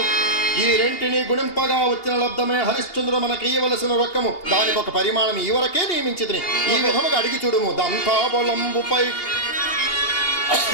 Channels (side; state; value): right; late; 2.8 ms